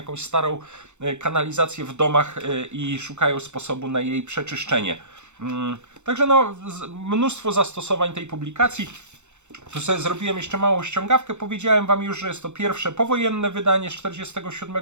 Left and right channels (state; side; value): late; left; 0.83 ms